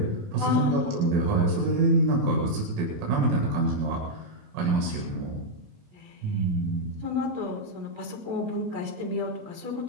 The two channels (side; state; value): left; late; 28 ms